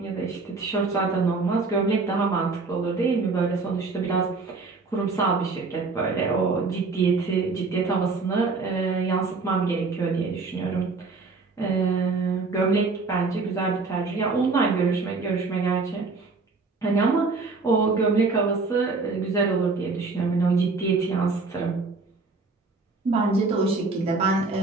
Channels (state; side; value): quieter; left; 4.1 dB